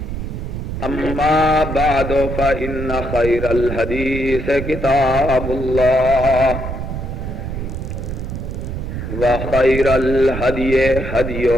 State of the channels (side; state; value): right; noise; rumble, 5 dB below the sound